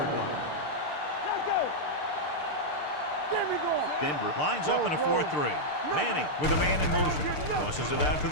line. Let's go. There we go. Denver lines up in a 4-3. Manning with a man in motion. Tosses it out to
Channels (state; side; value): late; right; 6.7 ms